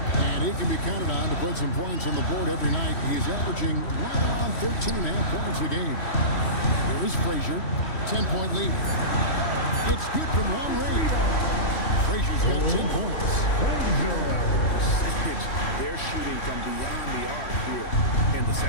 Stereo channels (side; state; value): right; late; 3.1 ms